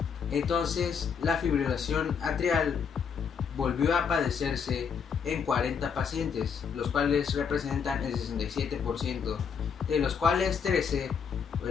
Entonces la fibrilación atrial volvió a padecerse en 40 pacientes, los cuales representan el 67%, de los cuales 13 o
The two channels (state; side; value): quieter; right; 6.6 dB